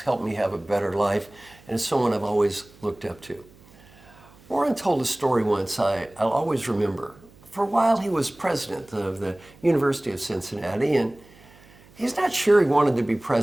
me have a better life, and is someone I've always looked up to. Warren told a story once I'll always remember. For a while, he was president of the University of Cincinnati, and he's not sure he wanted to be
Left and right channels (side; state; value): right; noise; hum, 26 dB below the sound